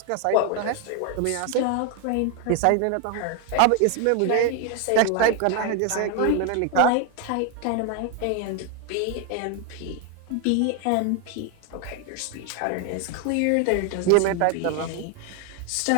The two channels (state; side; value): different; both; correlation 0.01